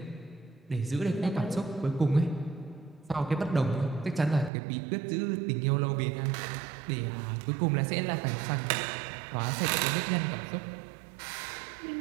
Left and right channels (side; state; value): left; drops out; at 4.5 s